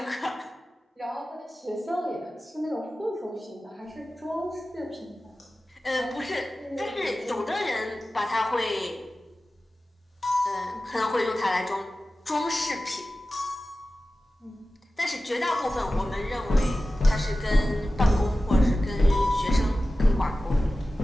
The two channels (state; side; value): normal; both; correlation 0.95